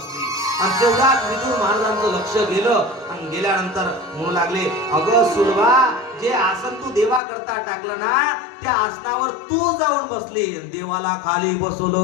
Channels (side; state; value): right; drops out; at 7.2 s